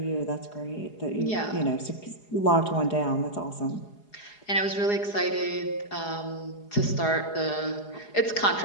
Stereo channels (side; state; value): right; late; 4.8 ms